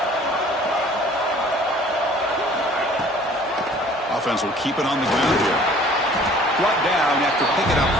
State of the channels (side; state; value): both; normal; correlation 0.52